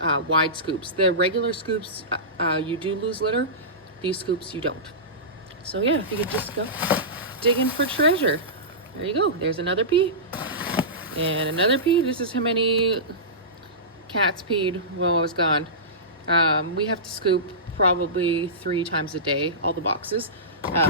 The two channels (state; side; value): normal; both; correlation -0.19